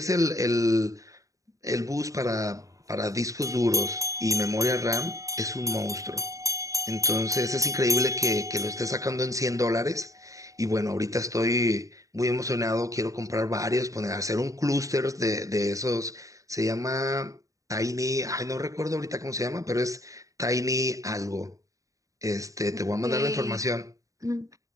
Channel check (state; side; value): late; left; 0.16 ms